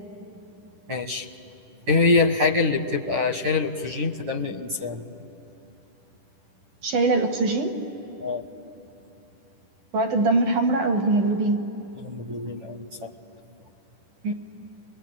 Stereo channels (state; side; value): late; left; 10 ms